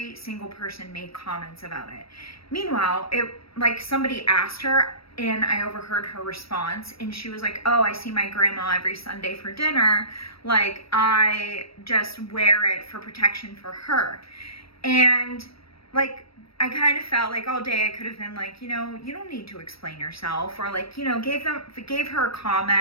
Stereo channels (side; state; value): right; late; 0.76 ms